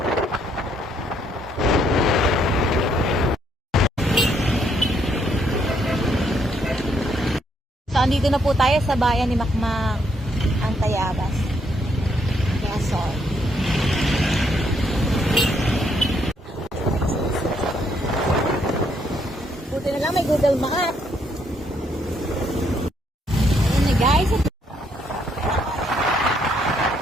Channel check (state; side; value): normal; both; correlation 0.72